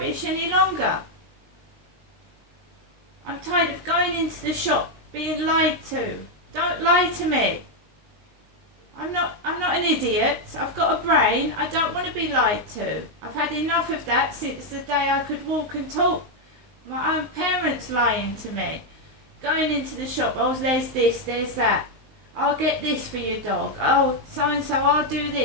any longer. I'm tired of going into the shop being lied to. Don't lie to me. I'm not an idiot. I've got a brain. I don't want to be lied to. I've had enough of that since the day I could walk and talk. My own parents lying to me. Going into the shop, oh, there's this, there's that. I'll get this for your dog. Oh, so-and-so, I'll do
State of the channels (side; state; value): left; late; 19 ms